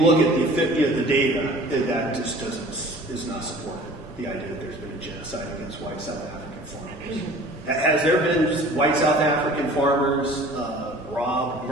at the data, that just is not supported. The idea that there's been a genocide against white South African farmers. Has there been white South African farmers robbed,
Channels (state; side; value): normal; both; correlation 0.46